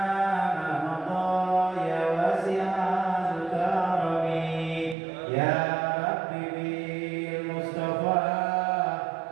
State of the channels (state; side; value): drops out; left; at 5.0 s